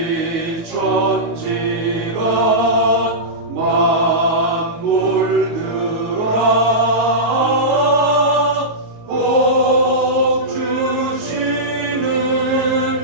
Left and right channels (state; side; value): late; left; 19 ms